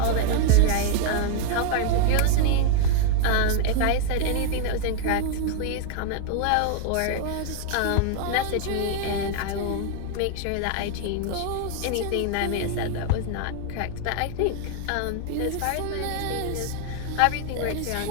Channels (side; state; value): both; different; correlation 0.00